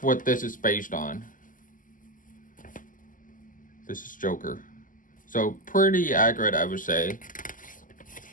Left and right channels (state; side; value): late; right; 0.38 ms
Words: what this is based on. This is Joker. So pretty accurate, I would say.